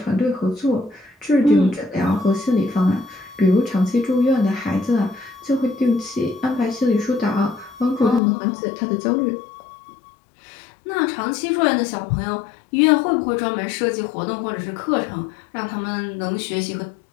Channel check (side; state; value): right; drops out; at 8.2 s